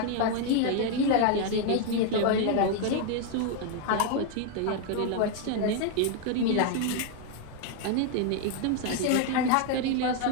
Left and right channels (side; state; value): both; different; correlation 0.00